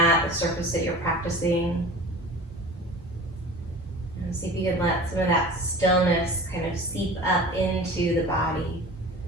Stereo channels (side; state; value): both; normal; correlation 0.39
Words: the surface that you're practicing. And see if you can let some of that stillness kind of seep up into the body.